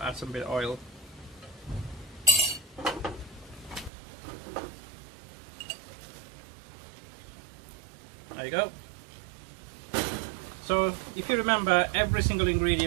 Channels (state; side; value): drops out; left; at 3.9 s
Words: add some bit of oil. There you go. So if you remember every single